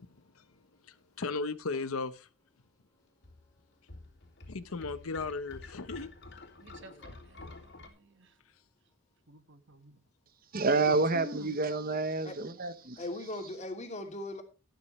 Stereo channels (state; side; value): normal; both; correlation -0.08